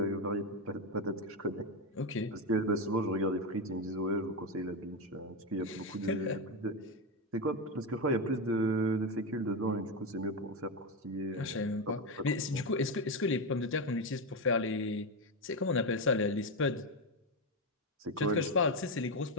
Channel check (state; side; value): normal; both; correlation 0.11